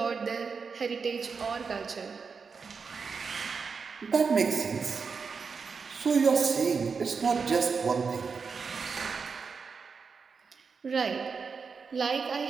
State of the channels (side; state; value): left; quieter; 5.3 dB